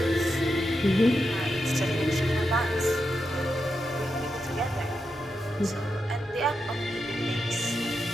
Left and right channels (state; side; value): normal; both; correlation 0.86